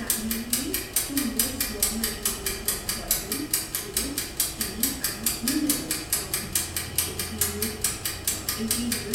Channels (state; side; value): identical; both; correlation 1.00